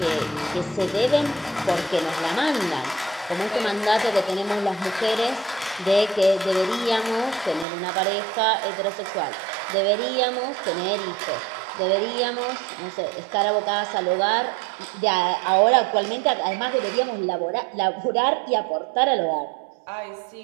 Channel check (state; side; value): drops out; left; at 7.7 s